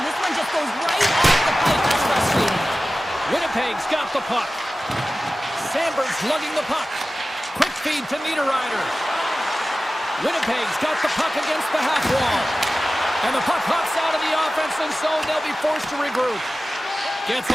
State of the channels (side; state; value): both; normal; correlation 0.95